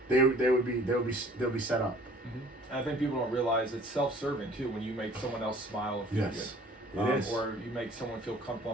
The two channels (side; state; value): both; normal; correlation 0.53